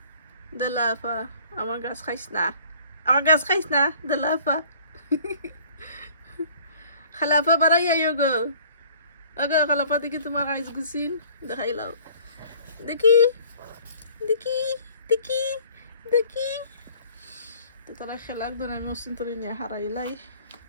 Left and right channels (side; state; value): both; inverted; correlation -0.52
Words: দেলাফা আমার গাছ খাইস না দেলাফা খালাফা বাড়াইয়া গো ওকে খালাফা দেখি তোমার গাছ গুছিন দেখাইলাও দেখি দেখি দেখি দেখি তো তারা খেলাক ধরে আমি অসিন তরি নিয়ে হারাইলাই